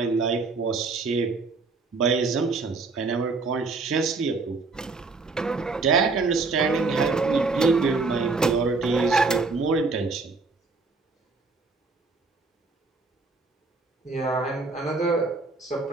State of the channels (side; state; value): left; quieter; 3.9 dB